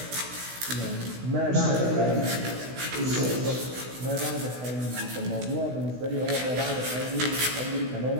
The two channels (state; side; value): late; left; 16 ms